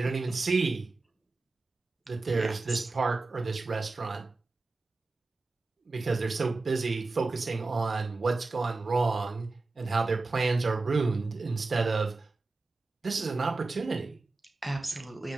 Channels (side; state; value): left; quieter; 3.5 dB